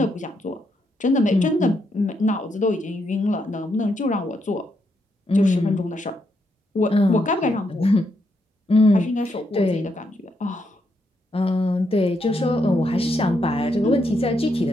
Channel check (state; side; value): normal; both; correlation 0.79